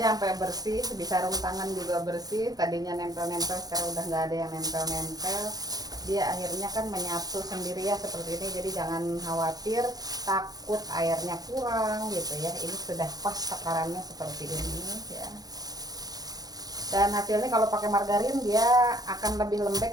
sampai bersih, sebisa sarung tangan juga bersih. Tadinya nempel-nempel, sekarang udah nggak ada yang nempel-nempel. dia akhirnya kan menyatu sendiri ya seperti ini. Jadi jangan khawatir takut airnya kurang gitu ya. Ini sudah pas takarannya seperti ini ya. Dan hasilnya kalau pakai margarin dia akan lebih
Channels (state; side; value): late; left; 0.19 ms